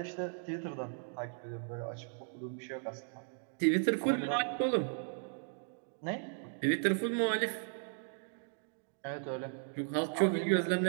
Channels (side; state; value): left; silent; 54 dB below the other